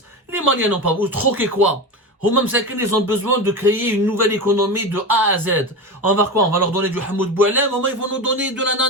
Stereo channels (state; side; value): normal; both; correlation 0.23